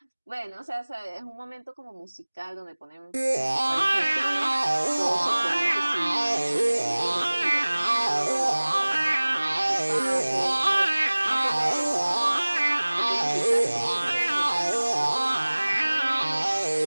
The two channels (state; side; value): inverted; both; correlation -1.00